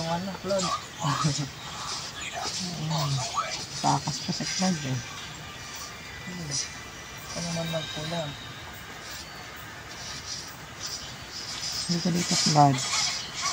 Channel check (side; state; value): both; identical; correlation 1.00